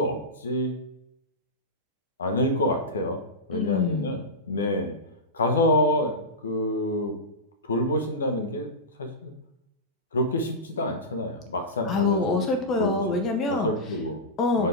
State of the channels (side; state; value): both; normal; correlation -0.14